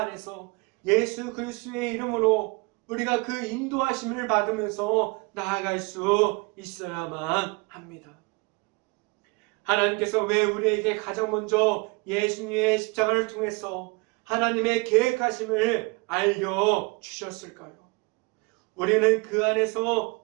예수 그리스도의 이름으로 우리가 그 인도하심을 받으면서 나아갈 수 있어야만 합니다. 하나님께서 왜 우리에게 가장 먼저 예수님의 십자가를 통해서 하나님의 계획하심을 알려주셨을까요? 우리는 그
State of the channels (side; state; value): left; quieter; 28.0 dB